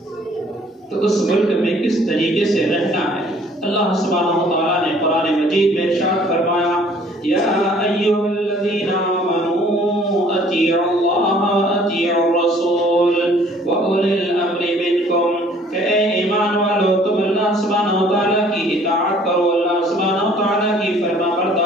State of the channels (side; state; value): both; normal; correlation 0.56